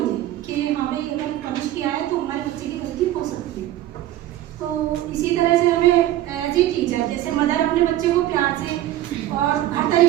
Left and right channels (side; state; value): left; quieter; 13.8 dB